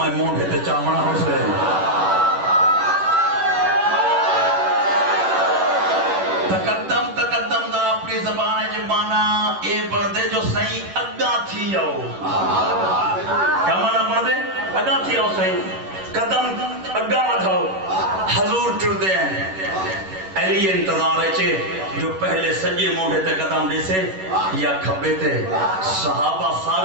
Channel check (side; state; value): left; late; 11 ms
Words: مونڈے تے چامنا ہو سے. تقدم تقدم دا اپنی زبان جو مانا اے بردے جو صحیح اگا تھی آؤ. کیا مانا بردے اگا تھی آؤ صحیح قدم اگا بڑھاؤ. حضور ٹردے ہیں علی انتظار ہے جو پہلے سجے موڑے تے قدم دے سے یا کھبے تے. صحابہ